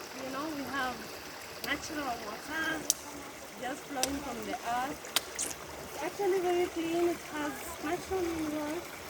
You know, we have natural water just flowing from the earth. It's actually very clean. It has natural minerals,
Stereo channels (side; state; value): both; identical; correlation 1.00